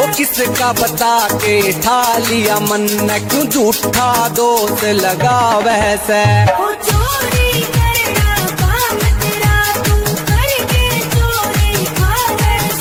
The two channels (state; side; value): identical; both; correlation 1.00